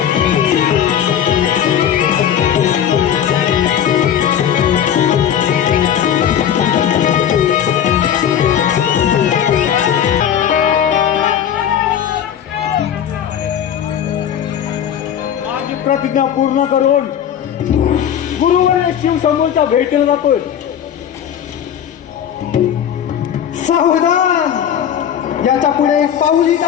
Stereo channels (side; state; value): right; quieter; 9.3 dB